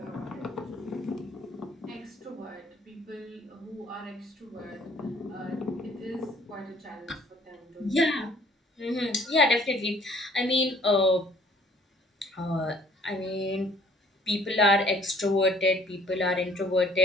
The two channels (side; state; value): both; normal; correlation 0.58